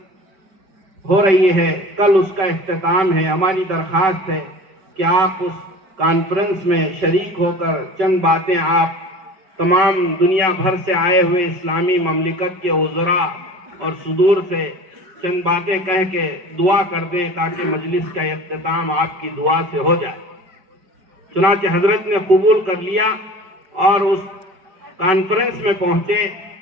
ہو رہی ہے، کل اس کا اختتام ہے، ہماری درخواست ہے کہ آپ اس کانفرنس میں شریک ہو کر چند باتیں آپ تمام دنیا بھر سے آئے ہوئے اسلامی مملکت کے وزراء اور صدور سے چند باتیں کہہ کے دعا کر دیں تاکہ مجلس کا اختتام آپ کی دعا سے ہو جائے. چنانچہ حضرت نے قبول کر لیا اور اس کانفرنس میں پہنچے،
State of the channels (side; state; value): left; late; 5.2 ms